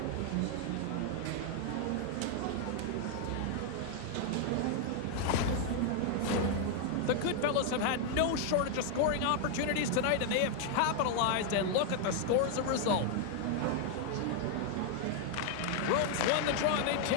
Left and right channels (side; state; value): both; different; correlation 0.00